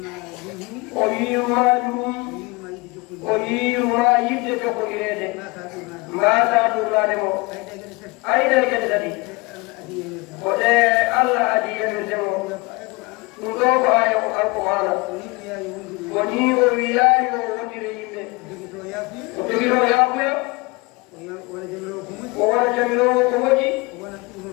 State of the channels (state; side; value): quieter; right; 25.5 dB